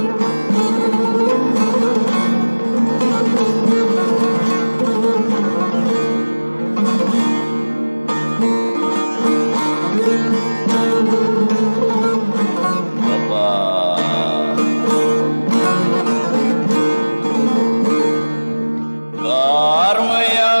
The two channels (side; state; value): both; inverted; correlation -1.00